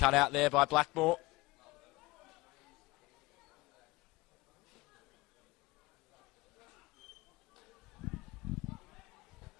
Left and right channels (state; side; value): quieter; right; 20.9 dB